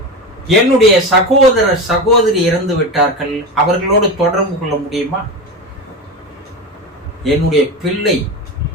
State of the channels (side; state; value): both; normal; correlation 0.22